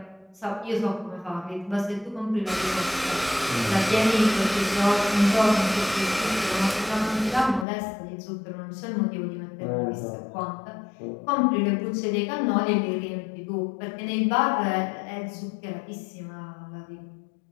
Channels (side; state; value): right; drops out; at 7.7 s